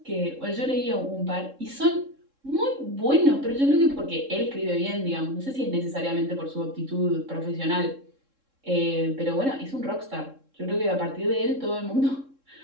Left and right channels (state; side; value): late; left; 3.7 ms